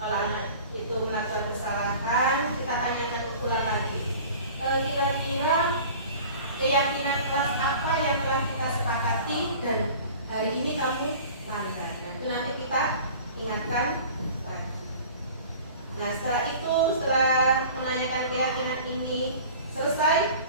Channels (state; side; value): inverted; both; correlation -0.42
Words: kalau anak itu melakukan kesalahan, kita tanyakan ulang lagi. Kira-kira keyakinan kelas apa yang telah kita sepakati dan hari ini kamu langgar. Nah, itu nanti kita ingatkan lagi. Nah, setelah menanyakan keyakinan ini